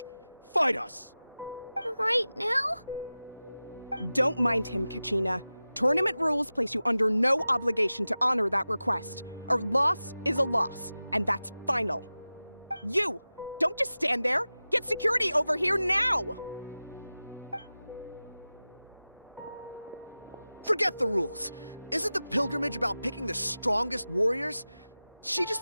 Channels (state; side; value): inverted; both; correlation -0.96